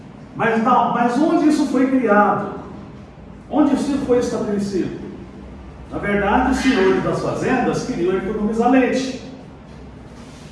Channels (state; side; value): identical; both; correlation 1.00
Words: Mas onde isso foi criado? Onde isso foi estabelecido? Na verdade, os senhores das fazendas queriam economizar leite.